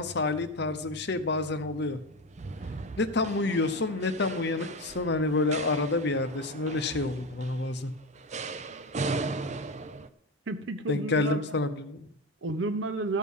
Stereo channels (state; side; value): normal; both; correlation 0.19